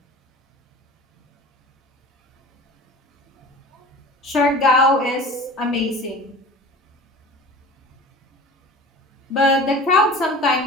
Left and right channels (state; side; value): normal; both; correlation 0.39